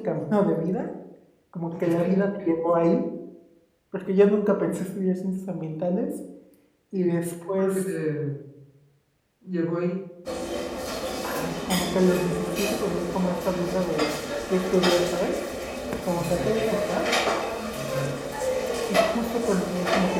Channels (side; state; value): both; identical; correlation 1.00